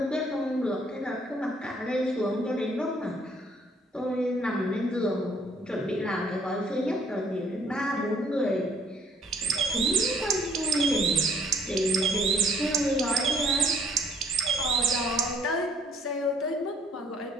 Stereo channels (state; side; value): normal; both; correlation 0.63